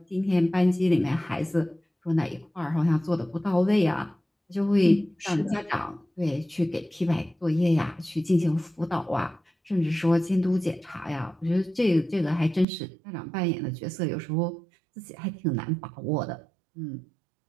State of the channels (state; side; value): drops out; left; at 12.7 s